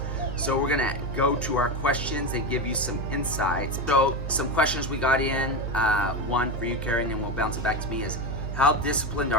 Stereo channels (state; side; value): noise; right; hum, 5 dB below the sound